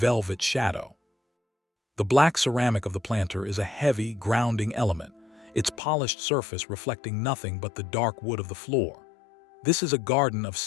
shadow. The black ceramic of the planter is a heavy, grounding element, its polished surface reflecting nothing but the dark wood of the floor. This is a garden of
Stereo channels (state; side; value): drops out; right; at 5.8 s